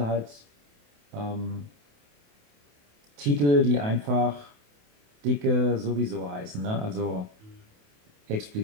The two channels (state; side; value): late; left; 28 ms